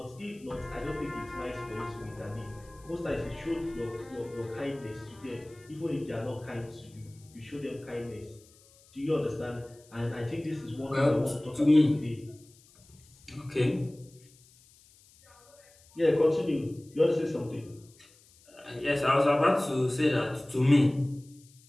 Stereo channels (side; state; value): left; noise; hiss, 27 dB below the sound